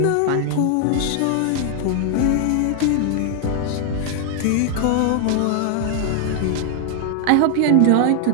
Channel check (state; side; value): different; both; correlation 0.00